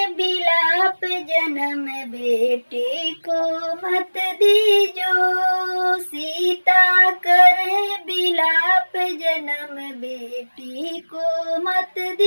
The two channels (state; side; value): inverted; both; correlation -1.00